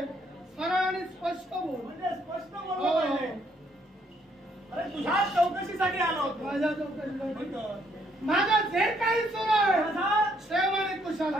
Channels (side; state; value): both; normal; correlation 0.70